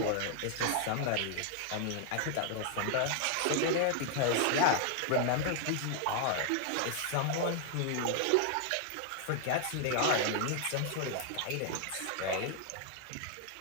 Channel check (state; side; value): different; both; correlation 0.00